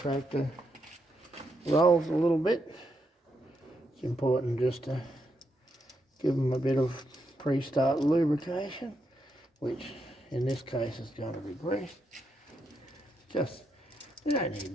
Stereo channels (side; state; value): both; normal; correlation 0.81